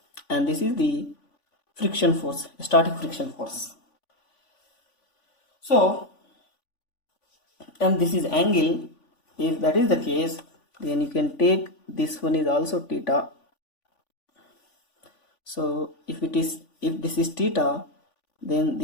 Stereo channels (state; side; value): late; right; 3.5 ms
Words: and this is the friction force, static friction force. So, and this is angle. If that is the case, then you can take this one is also theta. So if this is theta, then